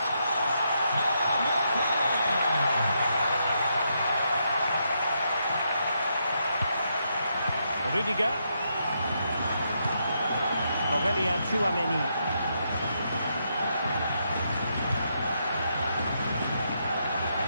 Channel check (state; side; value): inverted; both; correlation -0.79